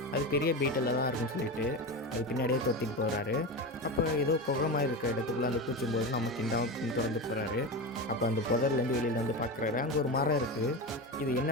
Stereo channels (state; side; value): normal; both; correlation 0.22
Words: அது பெரிய பீட்டில் தான் இருக்குன்னு சொல்லிட்டு அது பின்னாடியே தொத்திட்டு போகிறாரு. அப்போ ஏதோ குகமாக இருக்கிற இடத்துக்குள்ளே அந்த பூச்சும் போது நம்ம கிண்டாவும் திறந்து போகிறாரு. அப்போ அந்த புதர்லேருந்து வெளியில் வந்து பார்க்குறாரு. அங்கே ஒரு மரம் இருக்குது. இது